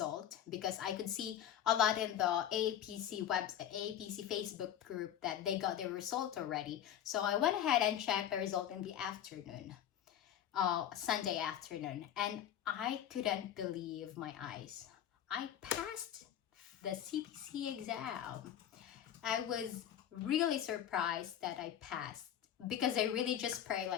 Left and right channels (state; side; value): quieter; right; 10.3 dB